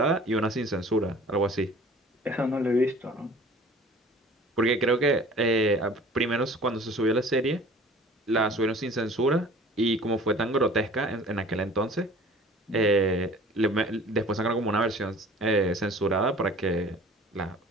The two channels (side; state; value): both; normal; correlation 0.47